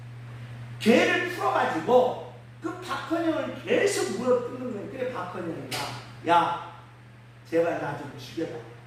개를 풀어가지고 그 박헌영을 계속 물어뜯는 거예요. 그래 박헌영이가 야 제발 나 좀 죽여라.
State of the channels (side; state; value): both; identical; correlation 1.00